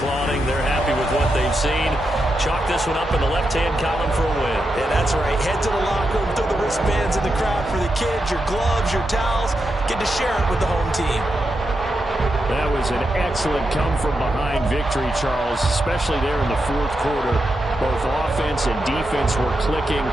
They're happy with what they've seen. Chalk this one up in the left-hand column for a win. Yeah, that's right. Head to the locker room, throw the wristbands in the crowd for the kids, your gloves, your towels. Get to share it with the home team. That was an excellent come-from-behind victory, Charles, especially there in the fourth quarter. Both offense and defense were clicking.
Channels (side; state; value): both; normal; correlation 0.86